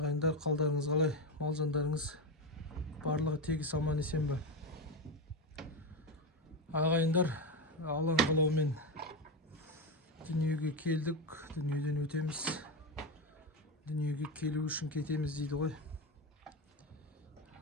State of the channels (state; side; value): normal; both; correlation 0.14